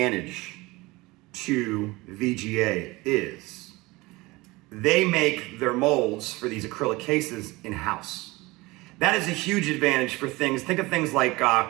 to VGA is they make their molds for these acrylic cases in-house. That is a huge advantage for things, think of things like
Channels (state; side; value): quieter; left; 21.9 dB